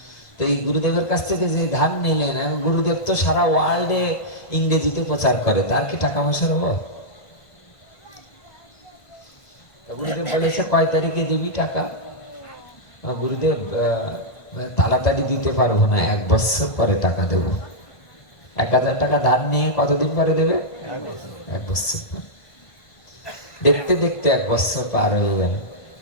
তো এই গুরুদেবের কাছ থেকে যে ধান নিলেন, গুরুদেব তো সারা ওয়ার্ল্ডে ইংরেজিতে প্রচার করে, তার কি টাকা পয়সার অভাব? গুরুদেব বলেছে কয় তারিখে দিবি টাকা? গুরুদেব তাড়াতাড়ি দিতে পারবো না, 1 বছর পরে টাকা দেবো। 1000 টাকা ধার নিয়ে কতদিন পরে দেবে? 1 বছর পরে। দেখতে দেখতে 1 বছর পার হয়ে গেল,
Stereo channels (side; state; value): right; late; 1.5 ms